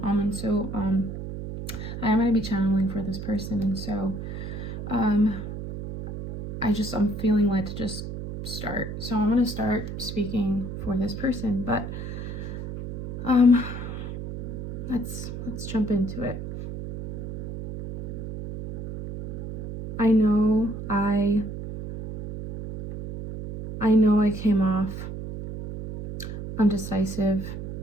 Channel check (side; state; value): right; noise; hum, 7 dB below the sound